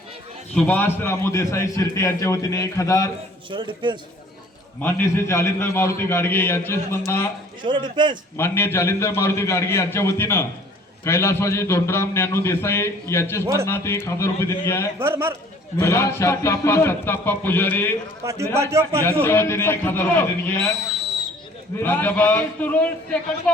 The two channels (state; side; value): normal; both; correlation 0.53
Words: सुभाष रामू देसाई शिर्टे यांच्या वतीने 1000। मान्य श्री जालिंदर मारुती गाडगे यांचे स्मरणा मान्य जालिंदर मारुती गाडगे यांच्या वतीनं कैलासवासी धोंडराम ज्ञानू देसाई यांचे स्मरणार्थ 1000 रुपये देणगी आहे। सत्ताप्पा पुजारी यांच्या वतीने 1000 रुपये देणगी आहे। प्राध्यापक